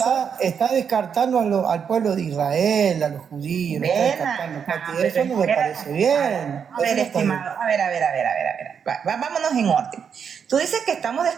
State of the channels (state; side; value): quieter; left; 7.1 dB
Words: está descartando al pueblo de Israel, a los judíos, lo está Ven descartando, acá, Katy. pero Eso no me espera. parece bien. A ver, Eso no está bien. estimado, a ver. Vámonos en orden. Tú dices que estamos